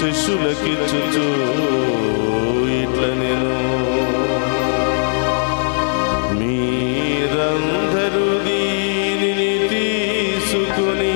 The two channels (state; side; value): silent; right; digital silence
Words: ఇట్ల నేను, మీరందరూ దీనిని